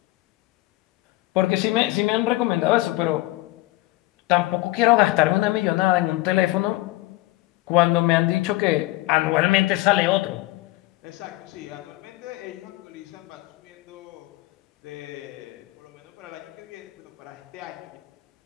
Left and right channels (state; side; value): quieter; right; 18.8 dB